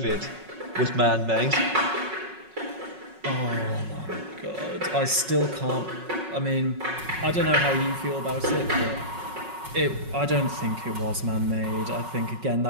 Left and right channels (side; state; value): left; late; 5.4 ms